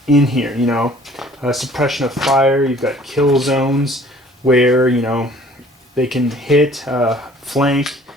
in here. Suppression of fire. You've got kill zones where they can hit flank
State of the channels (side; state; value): both; normal; correlation 0.53